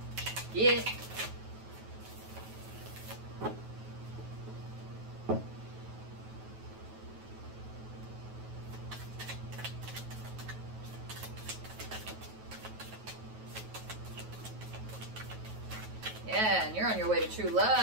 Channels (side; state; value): left; late; 9.3 ms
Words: Yeah. Yeah, and you're on your way to true